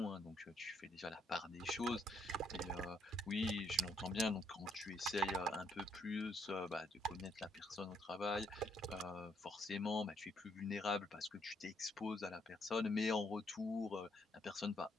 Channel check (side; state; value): both; normal; correlation 0.70